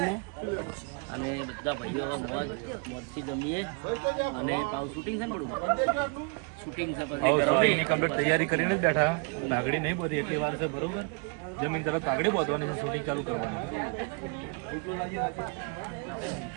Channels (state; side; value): quieter; left; 34.6 dB